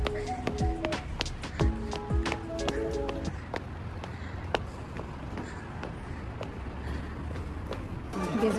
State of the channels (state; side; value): identical; both; correlation 1.00